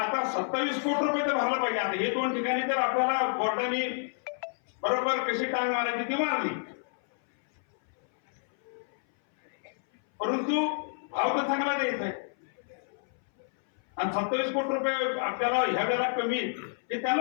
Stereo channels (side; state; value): right; silent; 58 dB below the other